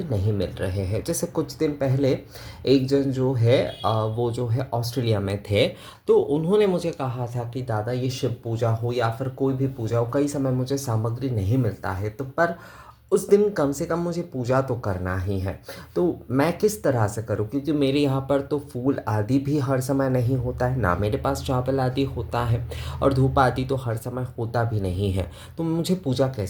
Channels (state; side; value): identical; both; correlation 1.00